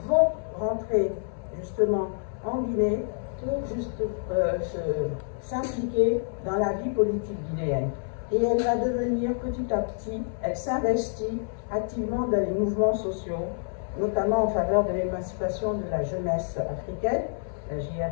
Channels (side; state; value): right; silent; 60 dB below the other